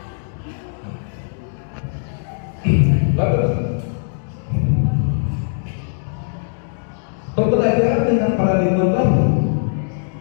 Bapak, pembelajaran dengan paradigma baru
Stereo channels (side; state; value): right; silent; digital silence